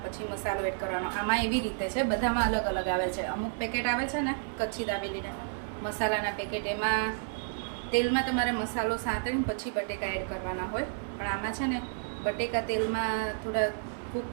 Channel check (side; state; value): left; silent; digital silence